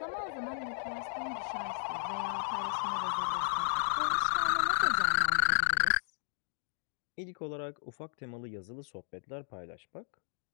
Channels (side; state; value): right; silent; digital silence